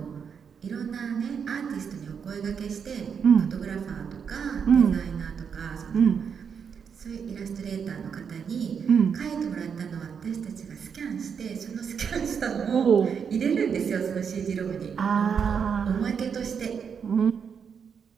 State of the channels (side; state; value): left; quieter; 6.8 dB